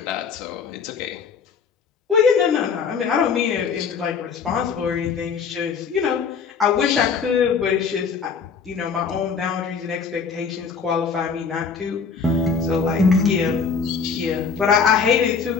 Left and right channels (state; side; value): quieter; right; 5.8 dB